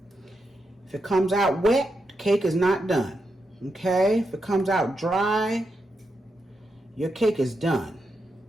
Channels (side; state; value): both; normal; correlation 0.85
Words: If it comes out wet, the cake is not done. Okay? If it comes out dry, your cake is done.